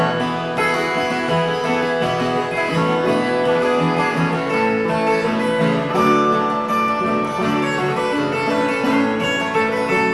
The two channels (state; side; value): identical; both; correlation 1.00